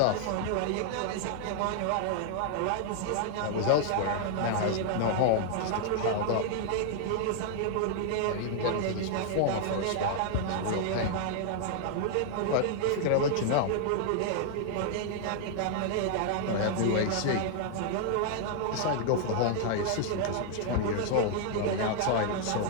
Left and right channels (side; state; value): both; different; correlation 0.00